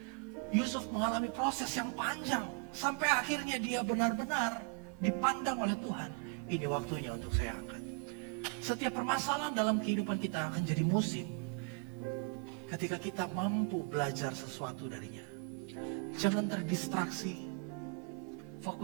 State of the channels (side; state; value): left; quieter; 37.1 dB